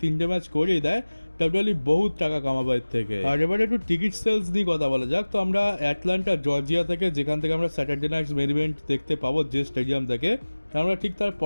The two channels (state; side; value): inverted; both; correlation -1.00